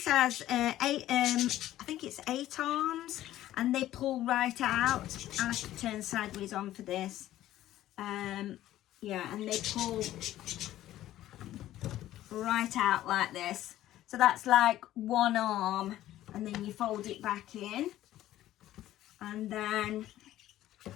has I think it's 8 arms, and they pull right out. I have to turn sideways on for this. Yeah, and they pull right out like this. So that's like one arm, and then you fold it back in, and then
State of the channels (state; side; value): quieter; right; 13.8 dB